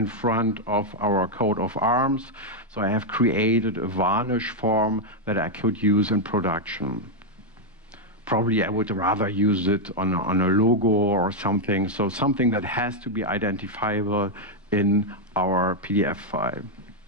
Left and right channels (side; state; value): both; normal; correlation 0.00